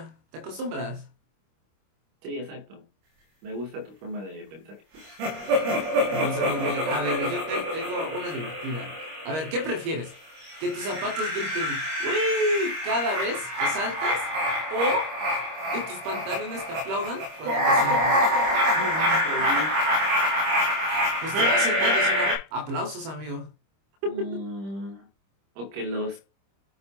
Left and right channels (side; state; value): left; late; 25 ms